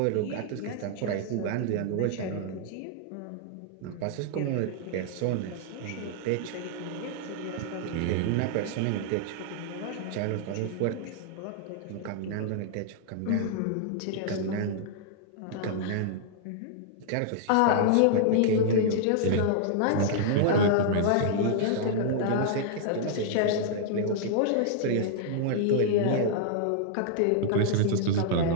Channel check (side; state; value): both; different; correlation -0.01